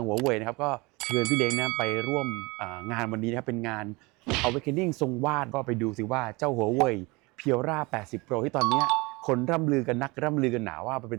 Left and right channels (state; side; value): quieter; left; 25.1 dB